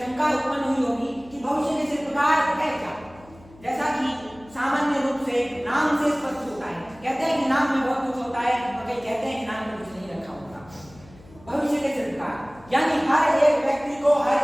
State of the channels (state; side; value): noise; left; hum, 23 dB below the sound